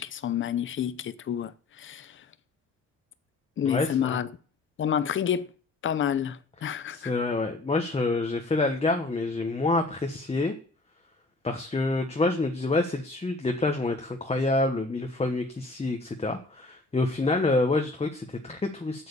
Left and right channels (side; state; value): right; quieter; 3.4 dB